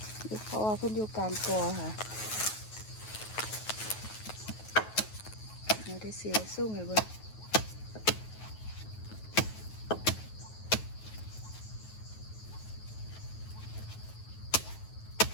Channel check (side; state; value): right; late; 9.3 ms